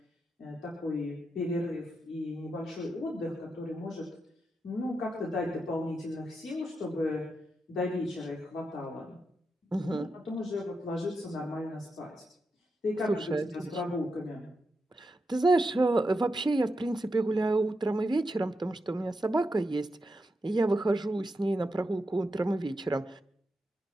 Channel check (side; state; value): both; normal; correlation 0.86